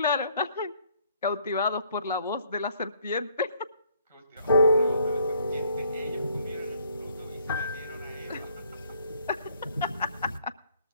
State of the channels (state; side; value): inverted; both; correlation -0.64